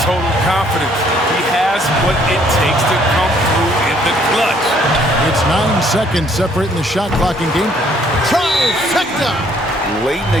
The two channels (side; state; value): both; normal; correlation 0.64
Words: total confidence. He has what it takes to come through in the clutch. It's 9 seconds separating the shot clock and game. Trifecta! late